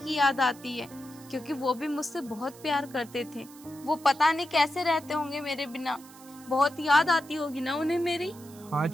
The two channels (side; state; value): right; noise; hiss, 21 dB below the sound